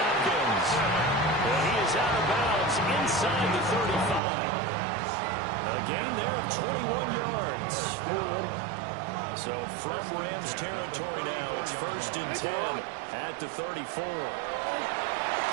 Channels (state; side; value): drops out; left; at 4.2 s